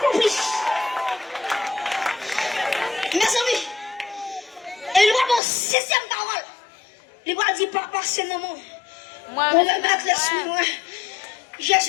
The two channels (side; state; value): right; drops out; at 5.4 s